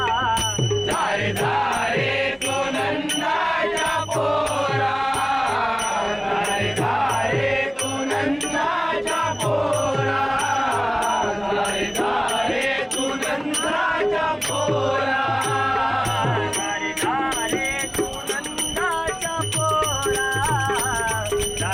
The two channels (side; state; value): both; identical; correlation 1.00